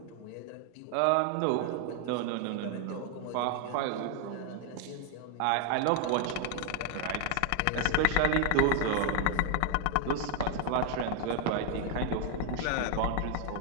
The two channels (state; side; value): different; both; correlation 0.00